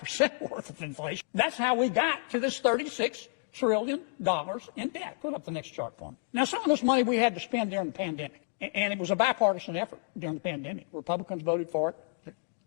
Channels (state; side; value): silent; right; digital silence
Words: worth of inflation. That's how we got to this $36 trillion in debt. Put up the next chart for me. Now, some of this money we had to spend during the pandemic. And it was a bipartisan effort during the pandemic. Republicans voted for it,